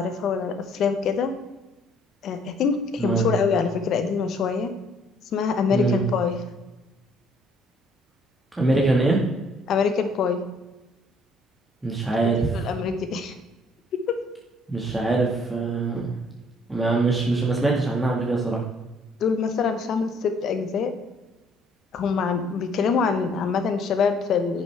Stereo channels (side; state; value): both; normal; correlation 0.62